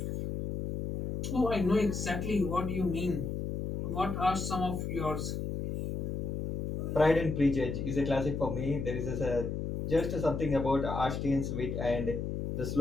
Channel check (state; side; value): noise; left; hum, 3 dB below the sound